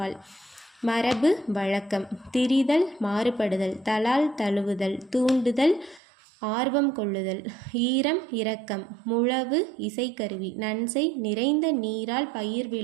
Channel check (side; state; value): left; drops out; at 6.0 s